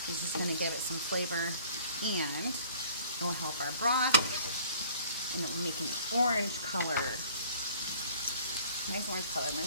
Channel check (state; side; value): inverted; both; correlation -0.53